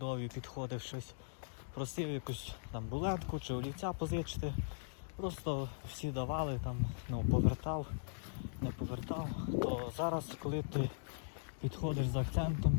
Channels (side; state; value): right; silent; digital silence